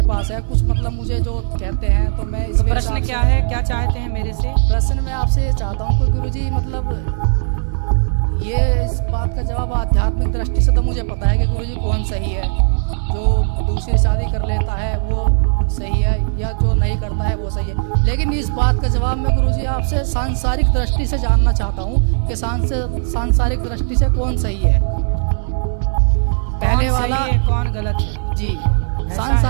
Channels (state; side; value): silent; left; 68 dB below the other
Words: पास है। कुछ मतलब मुझे जो कहते हैं तो मैं तो प्रश्न क्या है, क्या चाहते हैं मेरे से? प्रश्न मैं आपसे ये चाहता हूँ कि गुरुजी मतलब ये इस बात का जवाब आध्यात्मिक दृष्टि से तो मुझे पता है कि गुरुजी कौन सही है, जो दूसरी शादी कर लेता है वो सही है या जो नहीं करता है वो सही है। लेकिन इस बात का जवाब मैं गुरुजी आपसे सांसारिक दृष्टि से जानना चाहता हूँ कि सांसारिक दृष्टि से कौन सही है, पहले वाला सही है, कौन गलत है? जी,